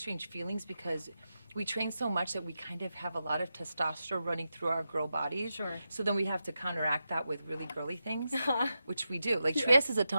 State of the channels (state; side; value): inverted; both; correlation -0.89